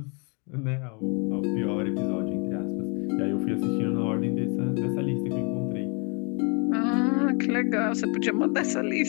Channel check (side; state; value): right; quieter; 34.3 dB